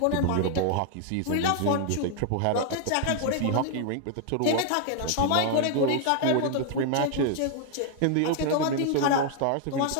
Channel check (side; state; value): both; different; correlation 0.00